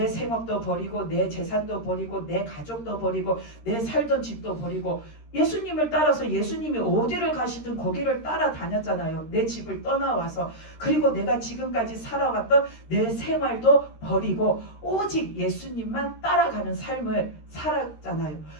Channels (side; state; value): right; late; 13 ms